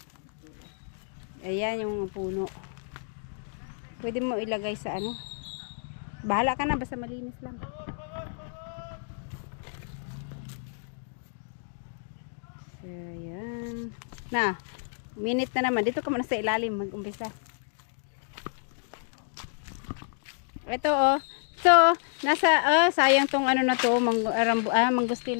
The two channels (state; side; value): silent; right; digital silence